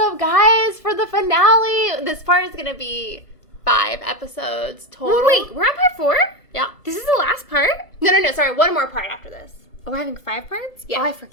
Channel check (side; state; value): right; late; 1.5 ms